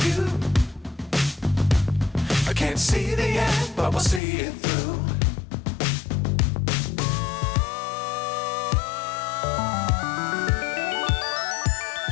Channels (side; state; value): right; drops out; at 4.2 s